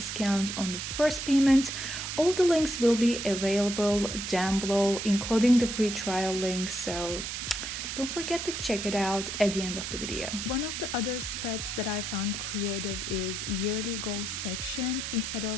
on the first payment. All the links will be available down below, including the free trial link. So don't forget to check it out at the end of the video. One of the other spreads that I found creative is yearly goals section. Instead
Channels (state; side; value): noise; right; hiss, 5 dB below the sound